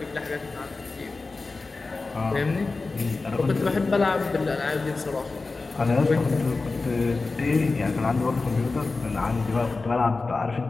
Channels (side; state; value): right; quieter; 3.8 dB